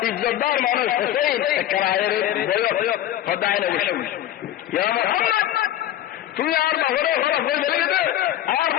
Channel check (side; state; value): right; quieter; 12.4 dB